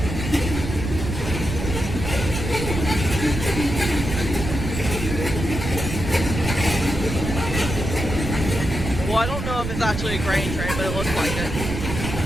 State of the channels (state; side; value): noise; right; rumble, 4 dB below the sound